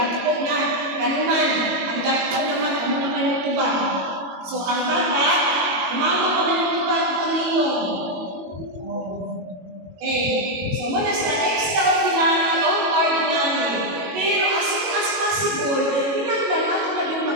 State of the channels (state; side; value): late; left; 22 ms